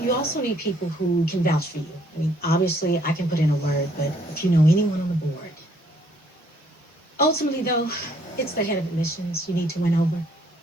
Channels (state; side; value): normal; both; correlation 0.65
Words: You also need people who can vouch for you. I mean, obviously, I can put in a word, but if you know anyone on the board. Ultimately, though, it's the head of admissions you need to win over.